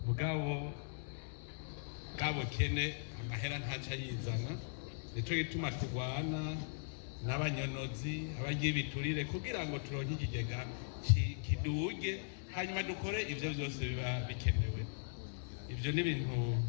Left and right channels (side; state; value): right; silent; 52 dB below the other